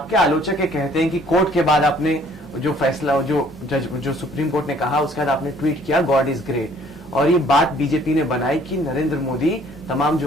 आलोचक ये कहते हैं कि कोर्ट के बाद आपने जो फैसला, जो सुप्रीम कोर्ट ने कहा, उसके बाद आपने ट्वीट किया गॉड इज ग्रेट, और ये बात बीजेपी ने बनाई कि नरेंद्र मोदी तमाम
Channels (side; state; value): both; normal; correlation 0.58